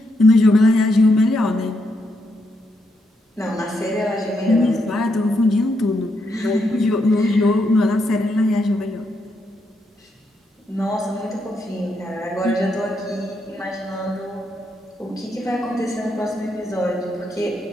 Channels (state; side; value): normal; both; correlation 0.80